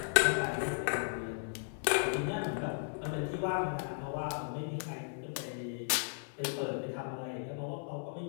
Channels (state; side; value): silent; right; 54 dB below the other